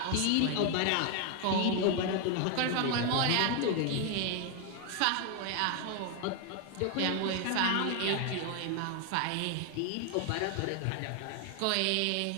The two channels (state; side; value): different; both; correlation 0.01